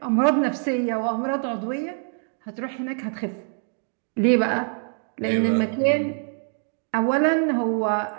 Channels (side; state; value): left; silent; 62 dB below the other